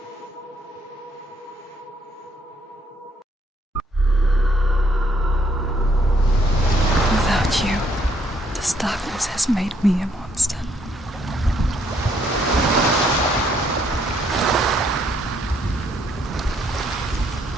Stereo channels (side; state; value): both; normal; correlation 0.69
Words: Without you, this darkness has made me a monster.